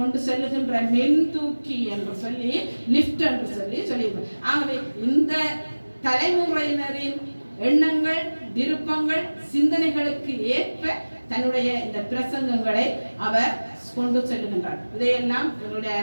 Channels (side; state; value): both; inverted; correlation -1.00